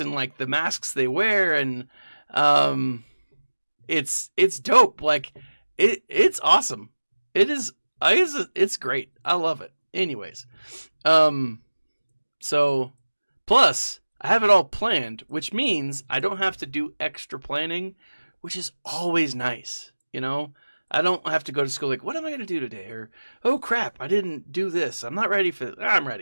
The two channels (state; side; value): inverted; both; correlation -1.00